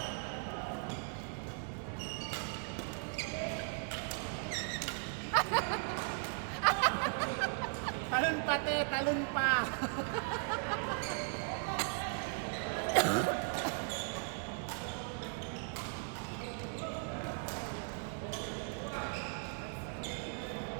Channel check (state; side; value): silent; left; 53 dB below the other